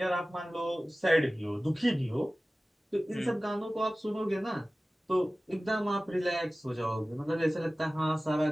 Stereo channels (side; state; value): both; normal; correlation 0.97